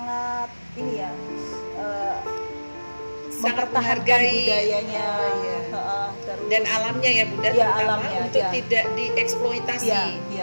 ini ya, Sangat mempertahankan menghargai budayanya, Oh, iya. terus Dan alamnya ya, Bunda, Ya, terutama alamnya, untuk ya. tidak dieksploitasi. ya,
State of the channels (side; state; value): both; inverted; correlation -1.00